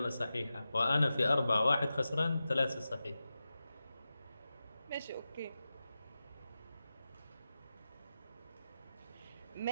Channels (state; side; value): inverted; both; correlation -0.92